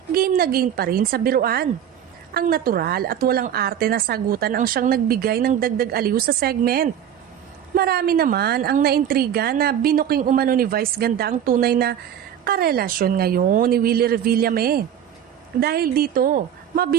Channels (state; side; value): quieter; left; 9.7 dB